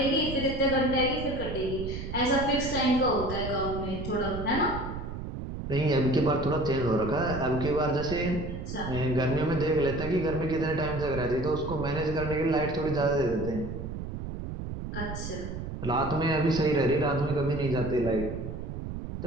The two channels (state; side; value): noise; right; rumble, 7 dB below the sound